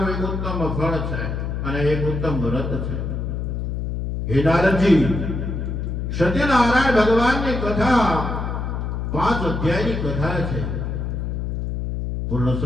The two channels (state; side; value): noise; left; hum, 3 dB below the sound